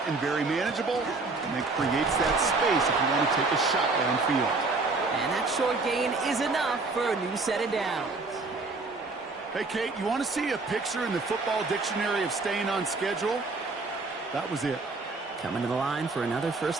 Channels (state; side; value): quieter; left; 3.7 dB